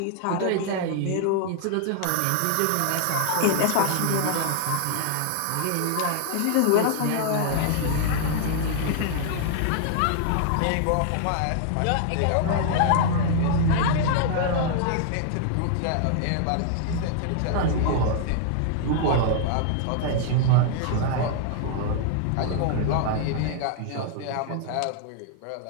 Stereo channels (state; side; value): different; both; correlation -0.01